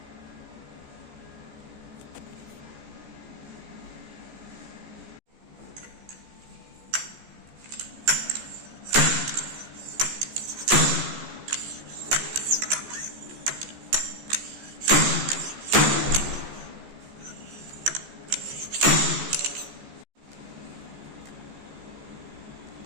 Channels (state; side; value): late; left; 14 ms